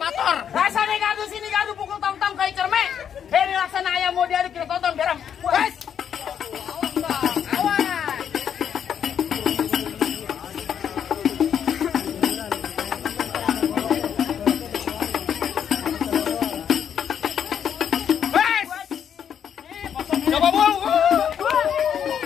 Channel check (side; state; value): right; quieter; 8.5 dB